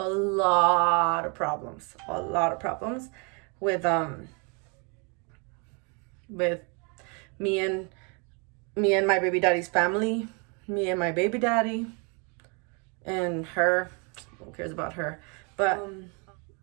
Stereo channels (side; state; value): left; quieter; 34.0 dB